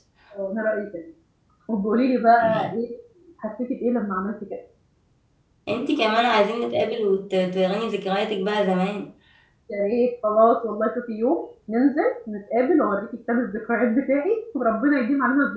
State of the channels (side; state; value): both; identical; correlation 1.00